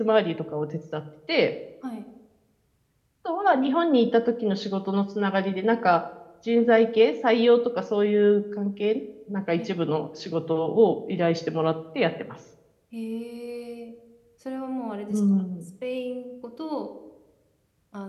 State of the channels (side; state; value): both; identical; correlation 1.00